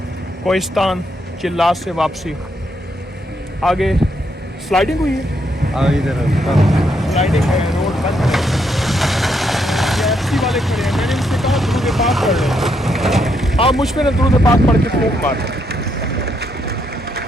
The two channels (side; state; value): both; normal; correlation 0.76